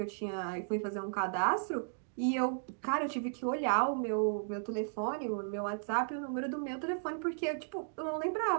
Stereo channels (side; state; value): left; silent; digital silence